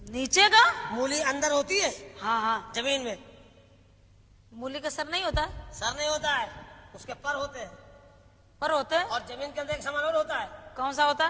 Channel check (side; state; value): both; identical; correlation 1.00